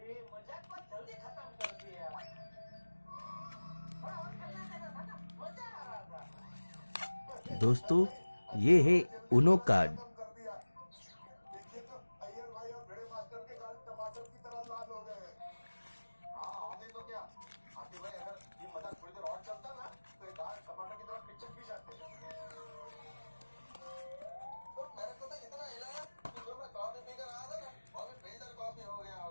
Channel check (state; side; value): inverted; both; correlation -1.00